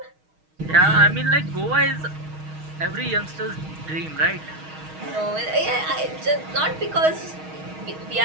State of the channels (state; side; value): late; left; 6.4 ms